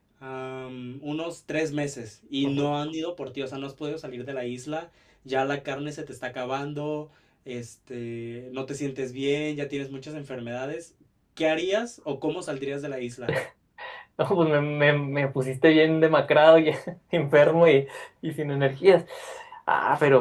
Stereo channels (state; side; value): identical; both; correlation 1.00